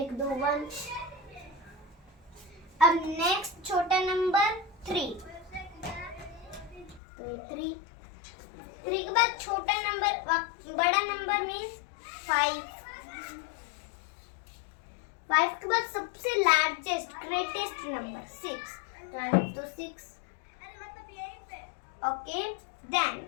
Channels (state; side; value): drops out; right; at 7.0 s